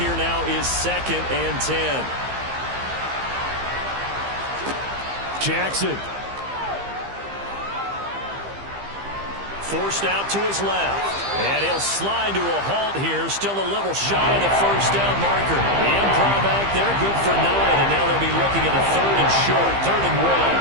now is 2nd and 10. Jackson. Forced out to his left. And he'll slide to a halt here, still a little shy of the first down marker. The improv act there, good for 9, and now they'll be looking at a 3rd and short, 3rd and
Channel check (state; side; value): late; left; 15 ms